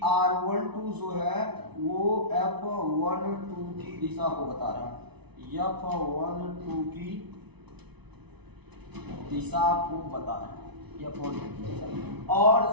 R12 जो है वो F12 की दिशा को बता रहा है, F12 की दिशा को बता रहा है, और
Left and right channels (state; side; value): late; left; 0.99 ms